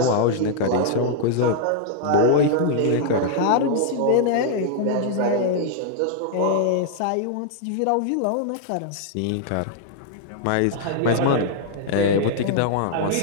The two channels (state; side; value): different; both; correlation -0.01